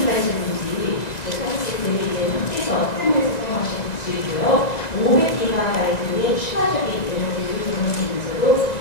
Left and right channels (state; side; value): late; right; 2.0 ms